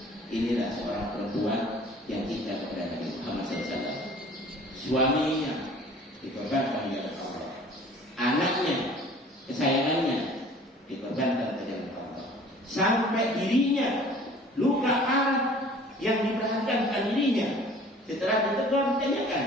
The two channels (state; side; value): normal; both; correlation 0.49